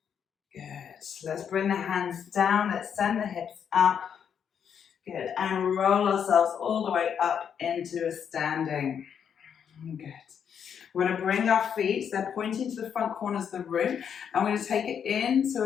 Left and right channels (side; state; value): right; quieter; 7.9 dB